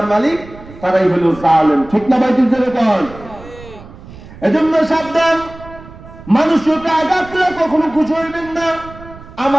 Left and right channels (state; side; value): noise; right; rumble, 18 dB below the sound